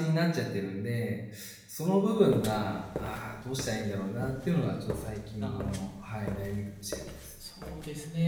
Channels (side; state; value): both; identical; correlation 1.00